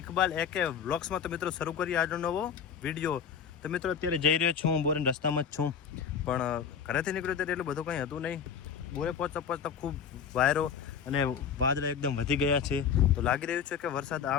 ઇકબાલ એકે વ્લોગ્સમાં. તો મિત્રો શરૂ કરીએ આજનો નવો વિડીયો. તો મિત્રો અત્યારે જઈ રહ્યો છું, હું બોરેન રસ્તામાં જ છું, પણ ઘરેથી નીકળ્યો ત્યારે એટલું બધું કંઈ હતું નહીં. બોરે પહોંચતા પહોંચતા ખૂબ વાયરો અને વાદળા એકદમ વધી ગયા છે. તો લાગી રહ્યું છે કે વરસાદ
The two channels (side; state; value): right; quieter; 7.2 dB